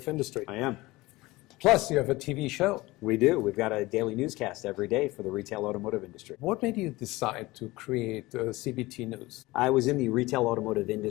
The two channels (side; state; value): right; quieter; 20.3 dB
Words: industry. I am. Plus, you have a TV show. We do. We've got a daily newscast every day for the retail automotive industry. What made you decide to create CBT News? I was in the retail automotive